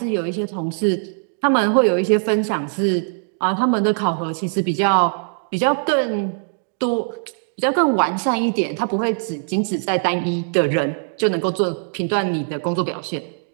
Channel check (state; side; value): silent; left; digital silence